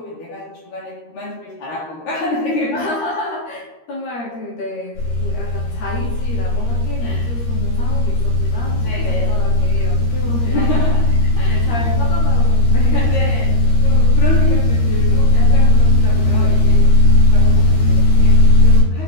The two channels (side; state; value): right; late; 13 ms